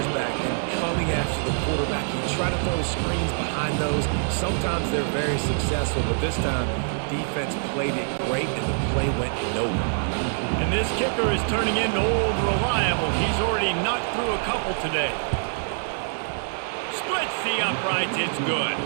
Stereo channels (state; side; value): silent; left; digital silence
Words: back and coming after the quarterback. You try to throw screens behind those. Sometimes they're very successful, but this time, defense played it great, and the play went nowhere. And this kicker is turning into old reliable. He's already knocked through a couple today. Splits the uprights. It's good.